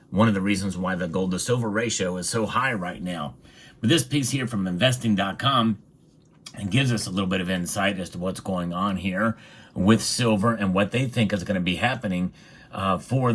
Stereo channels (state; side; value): identical; both; correlation 1.00